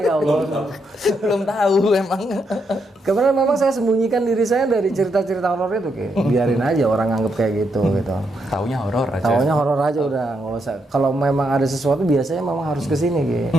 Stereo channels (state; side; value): normal; both; correlation 0.79